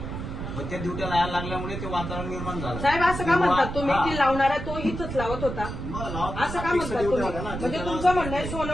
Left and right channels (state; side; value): noise; right; rumble, 6 dB below the sound